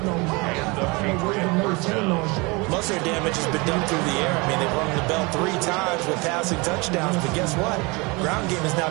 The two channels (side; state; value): left; quieter; 26.8 dB